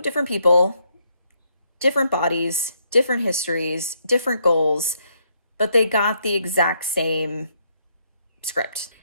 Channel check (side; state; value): both; inverted; correlation -0.74